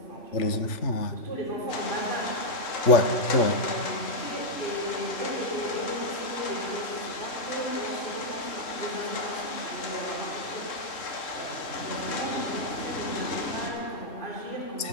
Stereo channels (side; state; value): right; late; 3.6 ms